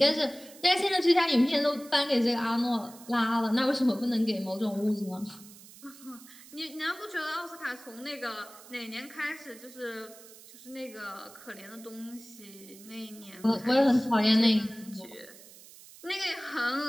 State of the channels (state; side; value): noise; right; hiss, 20 dB below the sound